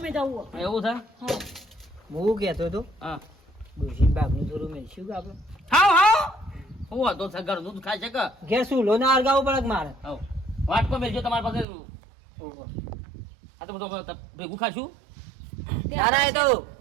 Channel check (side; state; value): left; drops out; at 11.7 s